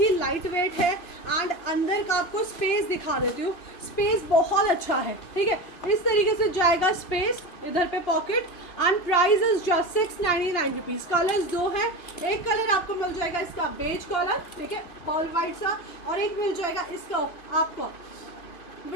लाइट वेट है, एंड अंदर का आपको स्पेस दिखा देती हूँ, स्पेस बहुत अच्छा है, ठीक है। इस तरीके से जाएगा स्पेस, इधर पे pocket, and price is just 699 rupees. Colours 2 हैं, एक कलर आपको मिल जाएगा इसका बेज कलर, ठीक है, पॉल वाइट सा, और एक मिल जाएगा इसका आपको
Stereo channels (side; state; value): right; late; 2.8 ms